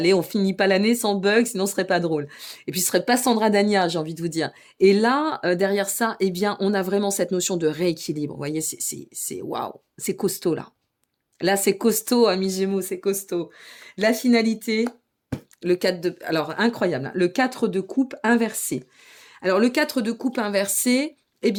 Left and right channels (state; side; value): identical; both; correlation 1.00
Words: on finit pas l'année sans bug, sinon ce serait pas drôle. Et puis ce serait pas Sandra Dania, j'ai envie de vous dire. Et là, derrière ça, eh bien, on a vraiment cette notion de rééquilibre. Vous voyez, c'est waouh, c'est costaud là. Là, c'est costaud, amis Gémeaux, c'est costaud. La finalité, le 4 de... Alors, incroyable, hein, le 4 de coupe inversé. Alors, le 4 de coupe inversé, eh